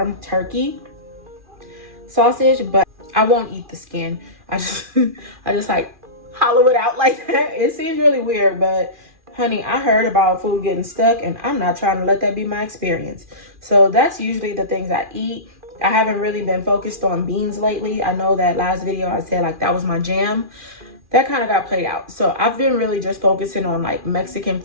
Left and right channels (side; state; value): left; late; 2.4 ms